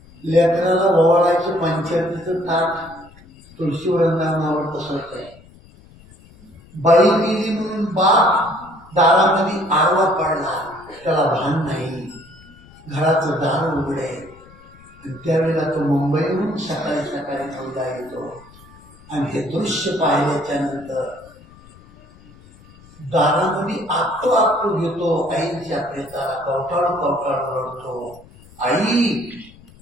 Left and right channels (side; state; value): left; noise; rumble, 24 dB below the sound